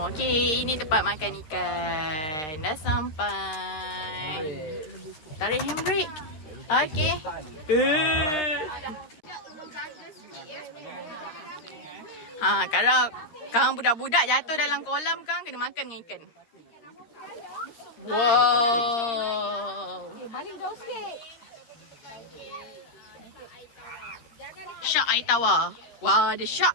Okey, ini tempat makan ikan. Dah sampai. Tarik handbrake. Okey. Kalau kang budak-budak jatuh dalam kolam kang kena makan dengan ikan. Wow. Balik jauh sikit. Shark air tawar. Wah, ada shark.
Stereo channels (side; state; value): right; late; 13 ms